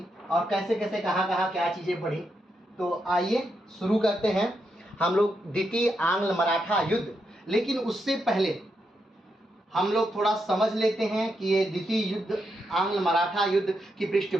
और कैसे कैसे कहाँ कहाँ क्या चीज़ें बढ़ी। तो आइए शुरू करते हैं हम लोग द्वितीय आंग्ल मराठा युद्ध। लेकिन उससे पहले हम लोग थोड़ा समझ लेते हैं कि ये द्वितीय युद्ध आंग्ल मराठा युद्ध की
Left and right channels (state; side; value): normal; both; correlation 0.83